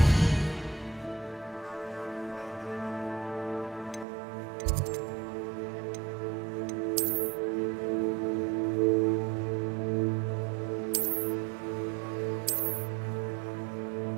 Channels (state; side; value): drops out; left; at 4.0 s